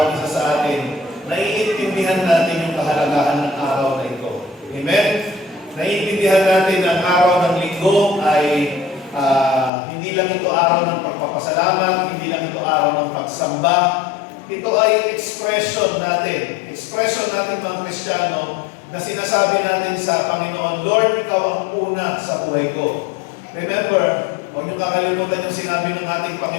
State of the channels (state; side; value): drops out; right; at 9.7 s